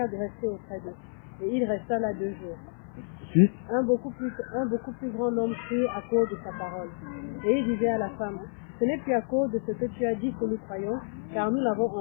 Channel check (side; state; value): right; silent; 58 dB below the other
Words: de rester auprès d'eux. Et il resta là 2 jours. Suite. Un beaucoup plus grand homme crut à cause de sa parole. Et il disait à la femme, ce n'est plus à cause de ce que tu as dit que nous croyons, car nous l'avons